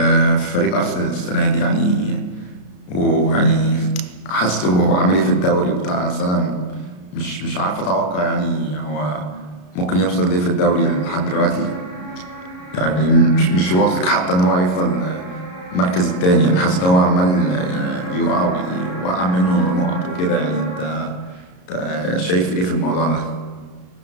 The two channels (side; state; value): right; late; 33 ms